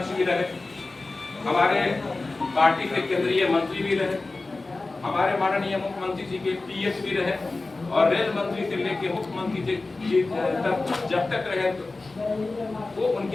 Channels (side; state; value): right; quieter; 3.4 dB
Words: भी रहे, हमारे पार्टी के केंद्रीय मंत्री भी रहे, हमारे माननीय मुख्यमंत्री जी के पीएस भी रहे, और रेल मंत्री से लेके मुख्यमंत्री जी तक जब तक रहे तो वो